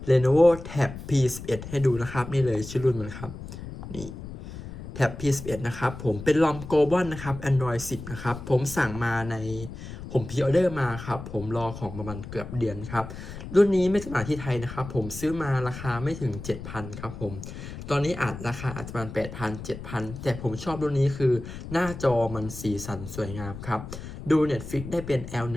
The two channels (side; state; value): left; noise; rumble, 11 dB below the sound